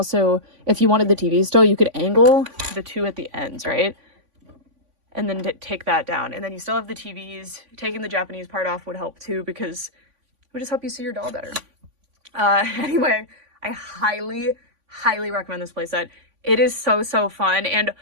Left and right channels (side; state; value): left; late; 3.5 ms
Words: if you wanted the TV still, you could angle the two at the ends, right? And then take that down. And then you still have the TVs. Taking the Japanese part off would help too, because it would just help you see your doll better. Anyway, I highly highly recommend this playset. It is so, so fun. And